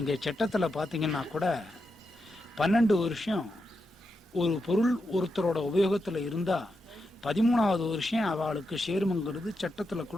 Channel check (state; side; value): normal; both; correlation 0.86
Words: சட்டத்துல பாத்தீங்கன்னா கூட 12 வருஷம் ஒரு பொருள் ஒருத்தரோட உபயோகத்துல இருந்தா 13வது வருஷம் அவளுக்கு சேருமங்கிறது சட்டத்துல